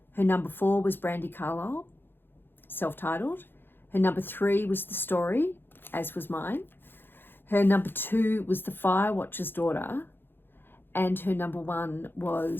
Her number 4 was Brandi Carlile, self-titled. Her number 3 was The Story, as was mine. Her number 2 was The Firewatcher's Daughter. And her number 1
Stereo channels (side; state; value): right; late; 0.10 ms